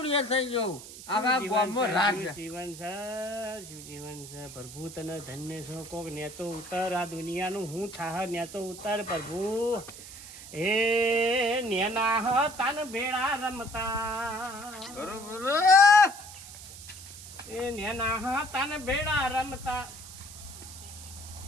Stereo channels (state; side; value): noise; right; hiss, 14 dB below the sound